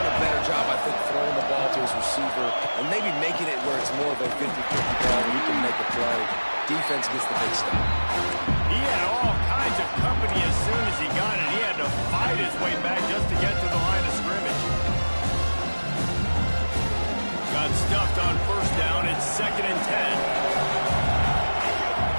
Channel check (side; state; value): both; inverted; correlation -1.00